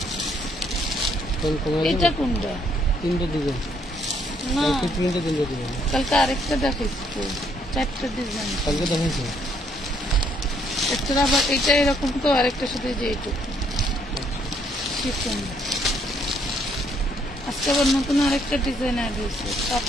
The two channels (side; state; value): both; normal; correlation 0.69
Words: এটা কোনটা? 3টা ডিজাইন না, 3টা ডিজাইন। কালকে আরেকটা দেখাইছি তো, 4টা ডিজাইন কালকে দেখাইছি। একটা আবার এটা এরকম তো, আরেকটার সাথে যে এইটুকু শিফন। আজকে আবার নতুন আরেকটা ডিজাইন অ্যাড হয়েছে,